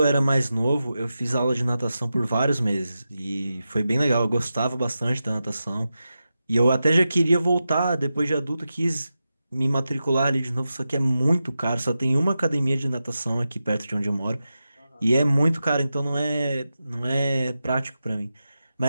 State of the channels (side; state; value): both; inverted; correlation -0.91